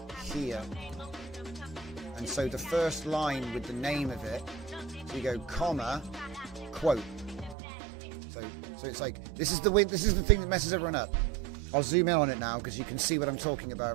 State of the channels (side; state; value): left; drops out; at 7.6 s